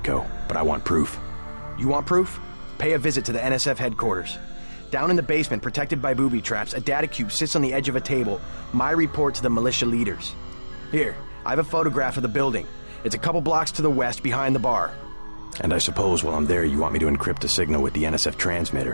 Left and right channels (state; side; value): inverted; both; correlation -1.00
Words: but I want proof. You want proof? Pay a visit to the NSF headquarters. Down in the basement, protected by booby traps, a data cube sits on the edge of a table. My report to the militia leaders. Here, I have a photograph of the building. It's a couple blocks to the west, behind the bar. And I suppose while I'm there, you want me to encrypt a signal with the NSF